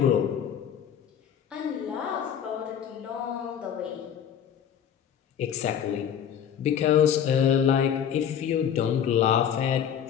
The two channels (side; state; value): right; quieter; 8.8 dB